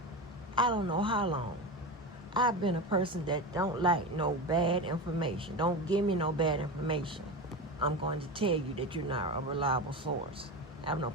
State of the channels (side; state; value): both; normal; correlation 0.22